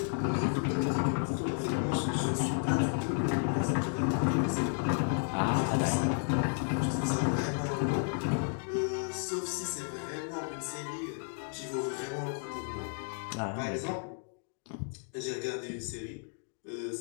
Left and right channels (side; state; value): right; silent; 56 dB below the other